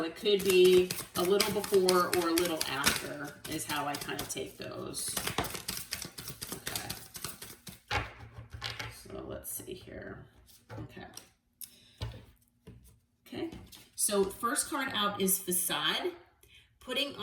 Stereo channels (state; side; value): identical; both; correlation 1.00